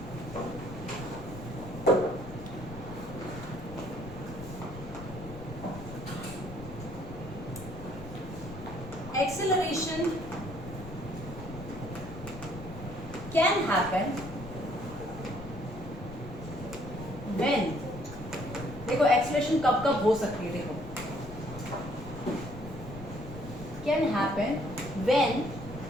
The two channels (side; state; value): left; noise; rumble, 15 dB below the sound